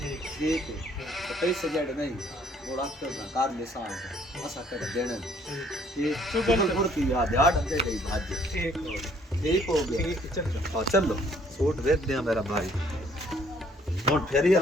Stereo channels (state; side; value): normal; both; correlation 0.62